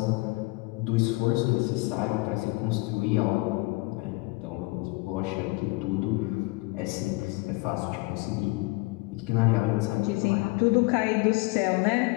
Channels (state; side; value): quieter; right; 25.4 dB